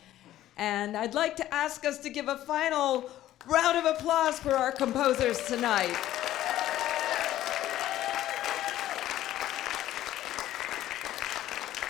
And I'd like to ask us to give a final round of applause for our composers tonight.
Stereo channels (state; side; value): quieter; right; 13.6 dB